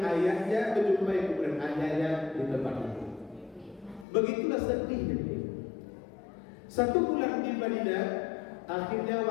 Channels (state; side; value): drops out; right; at 4.0 s